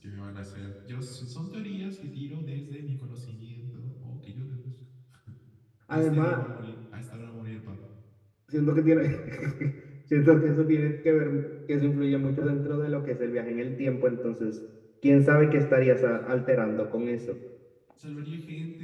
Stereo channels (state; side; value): identical; both; correlation 1.00